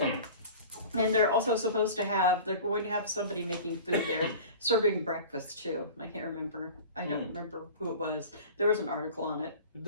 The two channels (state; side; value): inverted; both; correlation -0.38